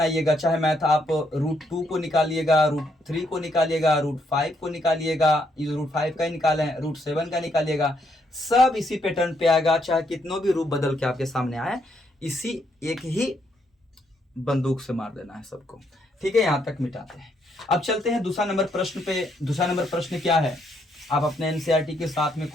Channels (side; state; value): both; normal; correlation 0.74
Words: चाहे मैथ आप √2 को निकालिएगा, √3 को निकालिएगा, √5 को निकालिएगा, √5 का ही निकाले हैं, √7 का निकालिएगा, सब इसी पैटर्न पे आएगा। चाहे कितनों भी रूप बदल के आपके सामने आए, इसी एक ही बंदूक से मार देना है सबको। ठीक है, यहां तक मिटाते हैं। अब चलते हैं दूसरा नंबर प्रश्न पे। दूसरा नंबर प्रश्न क्या है? आप अपने एनसीईआरटी के साथ में